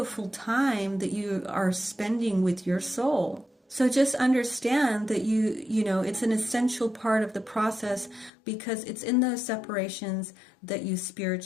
time that you are spending with your soul. So just understand that it's an essential part of the process, because it's in those separations that you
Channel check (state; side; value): drops out; right; at 8.3 s